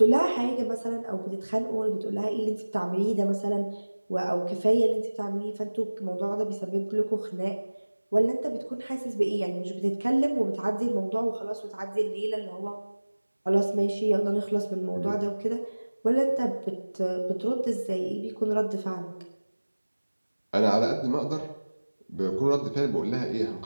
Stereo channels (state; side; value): inverted; both; correlation -1.00